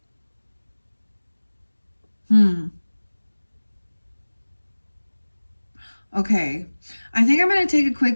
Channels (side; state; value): both; inverted; correlation -1.00